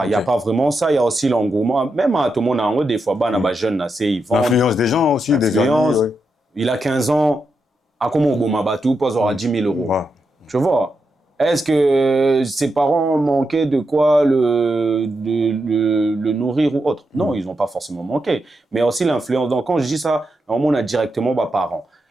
Il n'y a pas vraiment ça. Il y a aussi l'engouement. Même à tout le monde, en haut, des fois, jeune, ils vendent. L'influence des gens aussi, des amis. Ouais. Il a 15 ans. À comment on Mabatou, pas aura 10 000 euros. Ouais. Tu vois? Est-ce que ses parents manquaient de quoi le nourrir ou autre? Non, ils n'ont pas forcément manqué. Mais aussi l'influence. Donc, quand je dis ça, on a directement mes parents.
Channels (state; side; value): normal; both; correlation 0.85